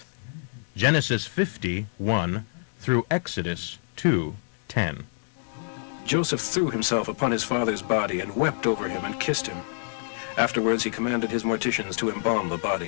Genesis 50:1 through Exodus 2:10. Joseph threw himself upon his father's body and wept over him and kissed him. Afterwards he commanded his morticians to embalm the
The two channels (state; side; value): silent; right; digital silence